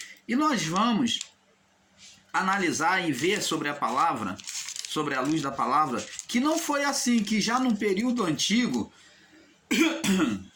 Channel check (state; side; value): identical; both; correlation 1.00